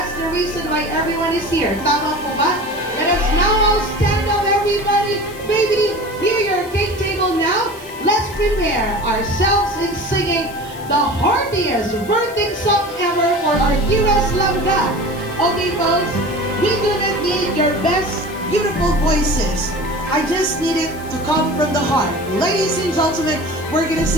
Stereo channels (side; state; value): left; noise; hiss, 20 dB below the sound